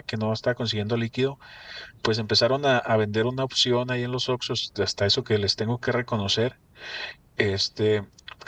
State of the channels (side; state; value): both; identical; correlation 1.00